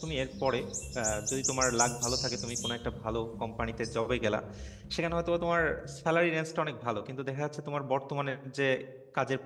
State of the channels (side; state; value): both; identical; correlation 1.00